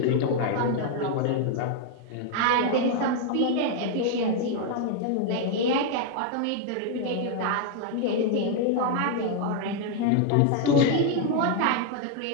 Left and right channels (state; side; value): different; both; correlation 0.00